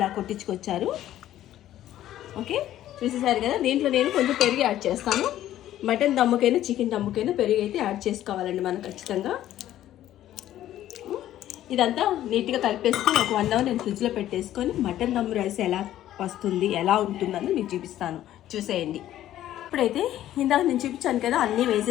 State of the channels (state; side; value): quieter; right; 12.8 dB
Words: కొట్టించుకొచ్చారు. ఓకే, చూసేసారు కదా. దీంట్లో నేను కొంచెం పెరుగు యాడ్ చేస్తాను. మటన్ దమ్ముకైనా చికెన్ దమ్ముకైనా పెరుగు అయితే యాడ్ చేసుకోవాలండి మనం ఖచ్చితంగా. ఇదంతా నీట్గా కలిపేసుకొని ఒక 1 అవర్ నేను ఫ్రిడ్జ్లో పెట్టేసుకొని మటన్ దమ్ రైస్ ఎలా వస్తుంది, ఎలా ఉంటుందని మీకు చూపిస్తాను, చూసేయండి. ఇప్పుడైతే ఇందాక నేను చూపించాను కదా, అన్నీ